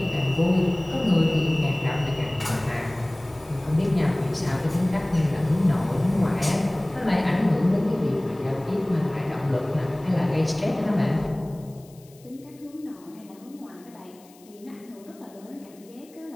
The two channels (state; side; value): noise; left; hiss, 27 dB below the sound